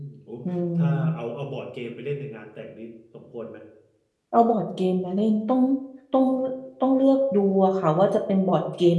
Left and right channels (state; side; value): identical; both; correlation 1.00